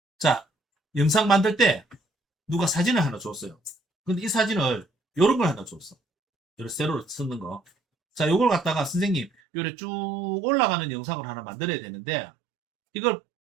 자, 영상 만들 때 누가 사진을 하나 줬어요. 근데 이 사진을 요런 걸 하나 줬어. 요런 세로로 쓰는 거. 자, 요걸 갖다가 선생님 요래 쭉 올라가는 영상을 하나 만들어야 되는데 이걸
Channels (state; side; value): drops out; left; at 9.3 s